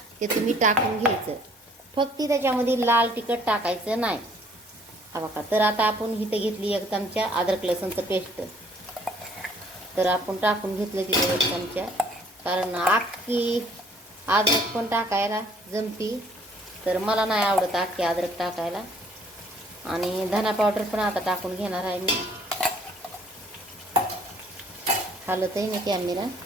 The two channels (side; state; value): both; normal; correlation 0.60